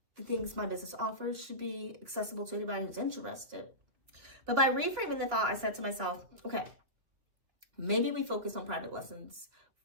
the things my business offers should be accessible to anybody who's interested. But by reframing the thought, I said to myself, okay, maybe we focus on private lessons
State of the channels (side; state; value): left; late; 2.8 ms